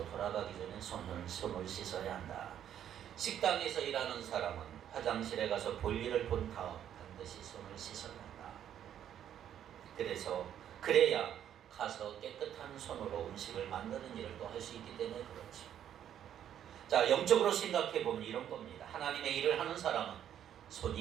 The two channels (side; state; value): left; quieter; 10.1 dB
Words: 돌아가기 전에 손을 씻어야 한다. 식당에서 일하는 사람은 화장실에 가서 볼일을 본 다음 반드시 손을 씻어야 한다. 그래야 가서 깨끗한 손으로 음식을 만드는 일을 또 할 수 있기 때문에 그렇죠. 자, 영적으로 생각해 보면 이런 겁니다. 하나님의 일을 하는 사람은